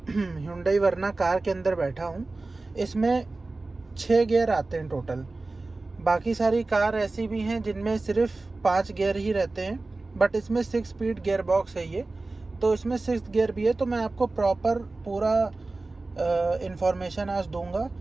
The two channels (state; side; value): quieter; left; 3.3 dB